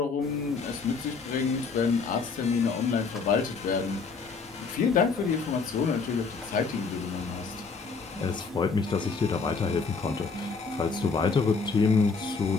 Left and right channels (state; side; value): quieter; right; 4.8 dB